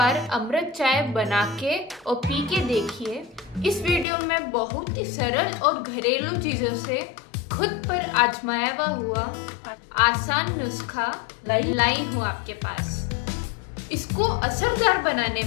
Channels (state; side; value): drops out; right; at 4.0 s